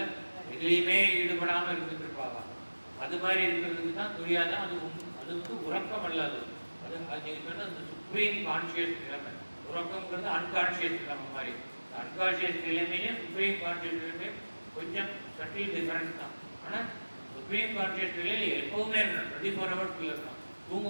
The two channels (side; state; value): both; inverted; correlation -1.00